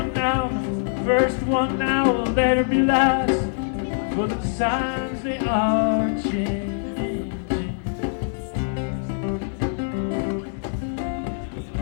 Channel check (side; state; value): right; silent; digital silence